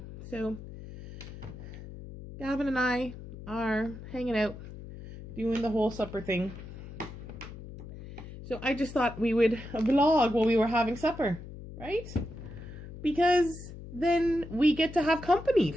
So Gavin and I are hanging out, doing the whole supper thing. So I just thought we would vlog while we were having supper, right? Because then we get to have company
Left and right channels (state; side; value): noise; left; hum, 13 dB below the sound